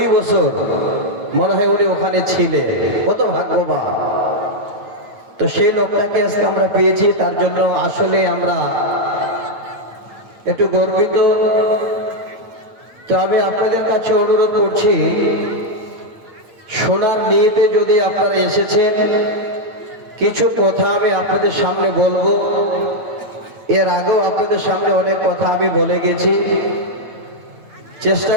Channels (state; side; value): late; left; 8.8 ms